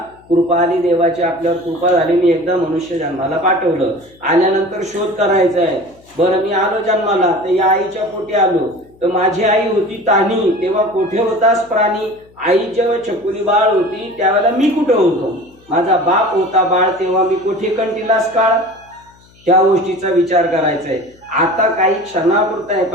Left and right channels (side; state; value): left; noise; hum, 29 dB below the sound